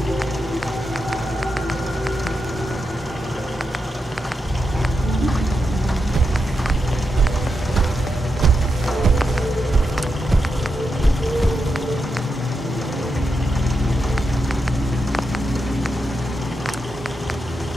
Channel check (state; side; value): normal; both; correlation 0.86